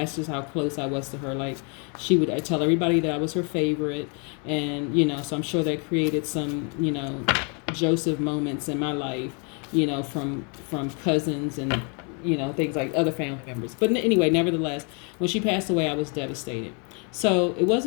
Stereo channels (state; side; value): quieter; right; 36.3 dB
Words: just how close I was to her. She would tell everybody that I was her favorite. And, so I'm sure that created some, Joseph moments in my life, from cousins and, things like other family members. But anyway, nevertheless, when she passed away, I was devastated. So it